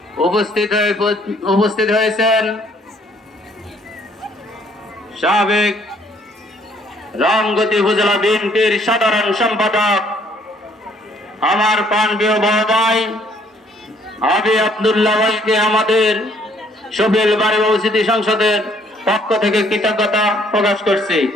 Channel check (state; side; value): normal; both; correlation 0.63